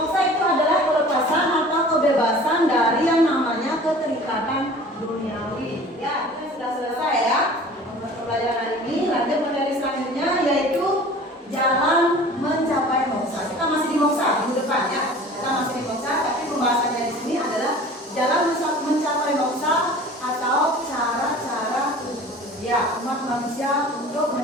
itu adalah kelepasan atau kebebasan dari yang namanya keterikatan duniawi. Ya, kita sudah selesai ya pembelajaran hari ini. Lanjut materi selanjutnya yaitu jalan mencapai moksa. Kita masih di moksa minggu depan ya. Kita masih di moksa, tapi pembahasannya di sini adalah jalan mencapai moksa atau cara-cara ya umat manusia untuk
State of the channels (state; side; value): normal; both; correlation 0.44